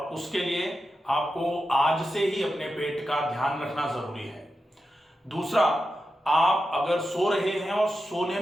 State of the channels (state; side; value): normal; both; correlation 0.90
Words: उसके लिए आपको आज से ही अपने पेट का ध्यान रखना जरूरी है। दूसरा, आप अगर सो रहे हैं और सोने